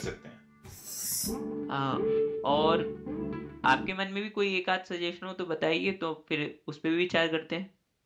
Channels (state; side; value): identical; both; correlation 1.00